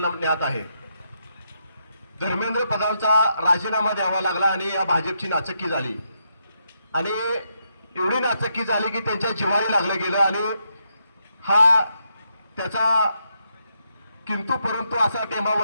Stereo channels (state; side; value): inverted; both; correlation -0.79